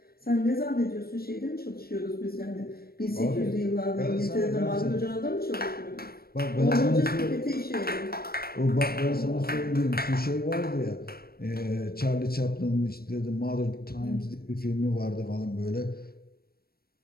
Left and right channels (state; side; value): late; right; 0.44 ms